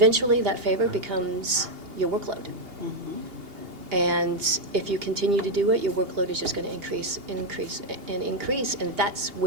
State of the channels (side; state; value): left; late; 2.8 ms